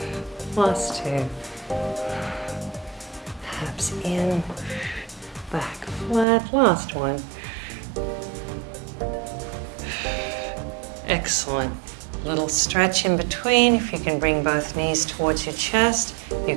Last 2. Abs in, back flat. Last one. Excellent. Little stretch in between. If you can bring both knees towards your chest, you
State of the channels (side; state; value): left; drops out; at 6.2 s